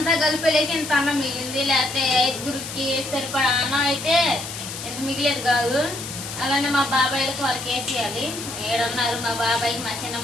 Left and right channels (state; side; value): noise; left; hiss, 9 dB below the sound